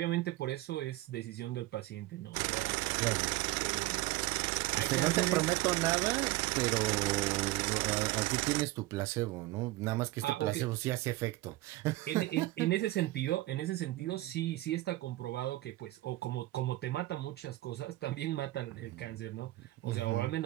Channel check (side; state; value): left; quieter; 18.0 dB